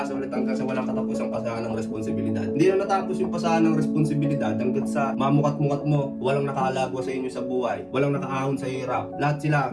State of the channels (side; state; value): both; identical; correlation 1.00